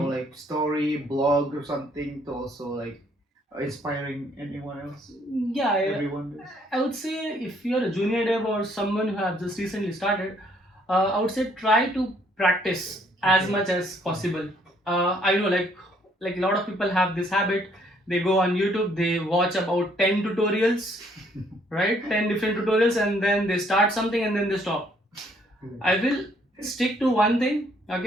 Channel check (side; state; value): both; normal; correlation 0.66